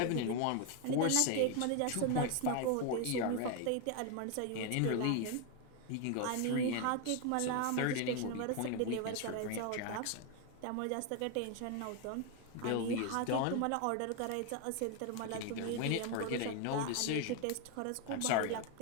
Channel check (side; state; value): both; different; correlation 0.01